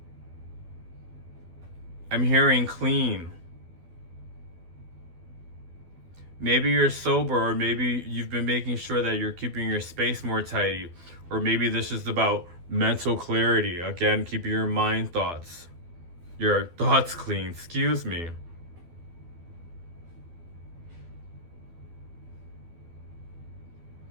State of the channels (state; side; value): late; left; 12 ms